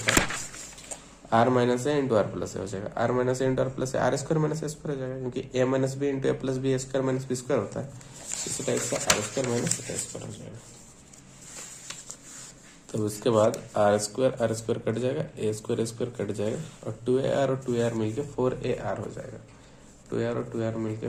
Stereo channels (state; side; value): identical; both; correlation 1.00